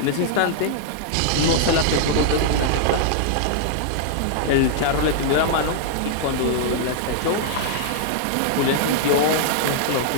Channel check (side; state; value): both; different; correlation -0.01